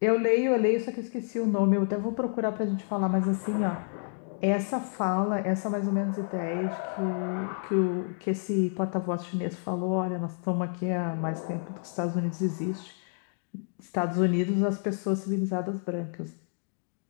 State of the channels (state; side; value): silent; right; digital silence